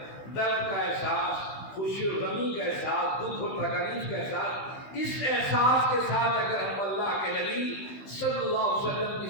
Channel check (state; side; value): late; right; 15 ms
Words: درد کا احساس، خوشی و غمی کا احساس، دکھ اور تکلیف کا احساس، اس احساس کے ساتھ اگر ہم اللہ کے نبی صلی اللہ علیہ وسلم